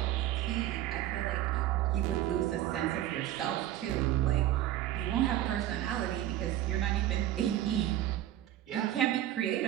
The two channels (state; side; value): quieter; left; 12.9 dB